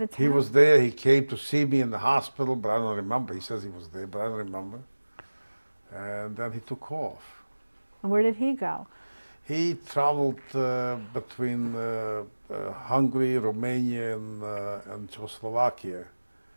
town? He was there. He came to see me in the hospital, but I don't remember. He says he was there, but I don't remember. And then he took off. And where did he go? He traveled between Hungary, Romania, and Czechoslovakia.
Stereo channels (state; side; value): inverted; both; correlation -1.00